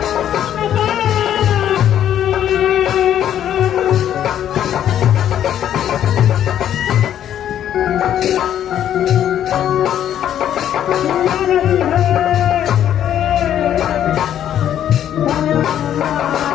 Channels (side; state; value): right; quieter; 10.5 dB